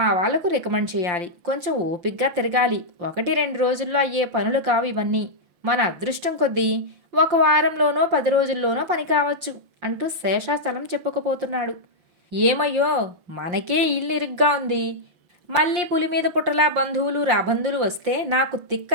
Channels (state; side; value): late; left; 5.7 ms